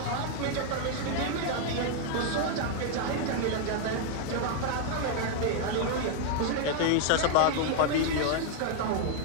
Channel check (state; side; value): different; both; correlation 0.00